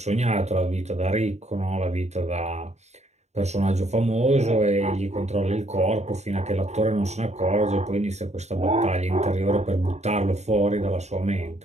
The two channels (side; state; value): left; late; 0.32 ms